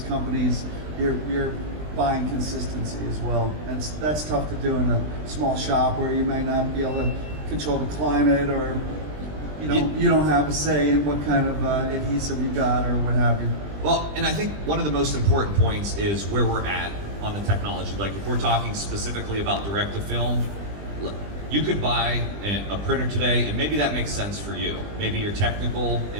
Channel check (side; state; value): left; late; 20 ms